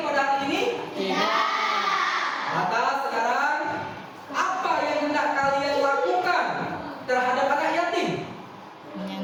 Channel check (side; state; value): both; identical; correlation 1.00